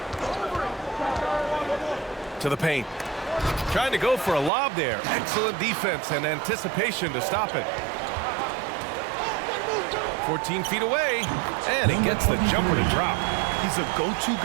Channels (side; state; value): left; drops out; at 4.5 s